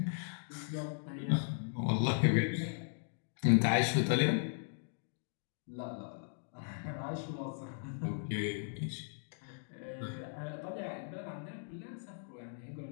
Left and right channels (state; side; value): silent; right; digital silence